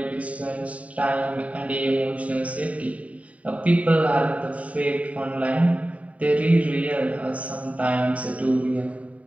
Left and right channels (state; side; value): late; left; 0.068 ms